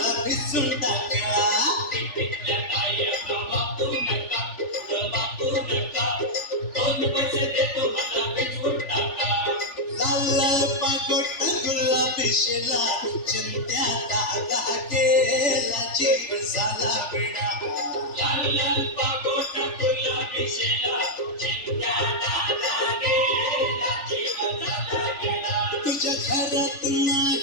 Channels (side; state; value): right; late; 3.4 ms